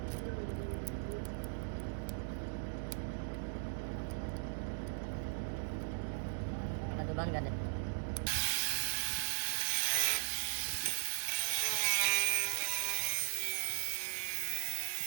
तो बंद कर दे।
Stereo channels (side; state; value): left; silent; digital silence